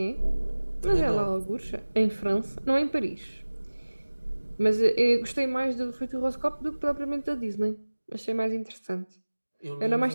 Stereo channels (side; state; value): both; inverted; correlation -1.00